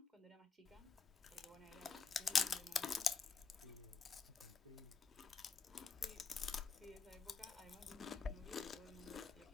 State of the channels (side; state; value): right; quieter; 5.2 dB